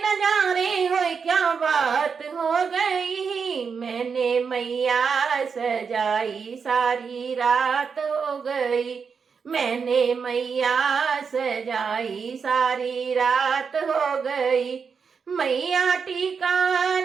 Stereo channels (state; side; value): quieter; left; 5.9 dB